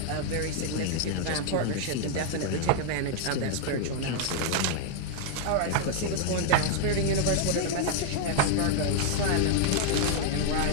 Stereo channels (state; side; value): different; both; correlation 0.00